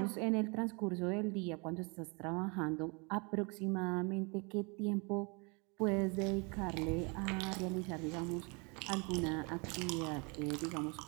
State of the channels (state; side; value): quieter; left; 31.2 dB